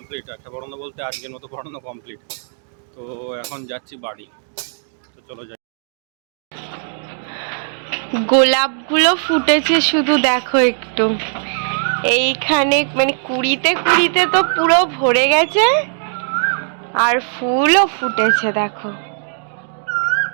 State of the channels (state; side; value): silent; left; digital silence